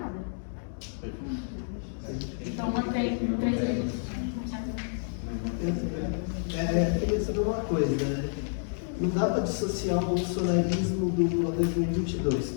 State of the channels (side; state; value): right; silent; digital silence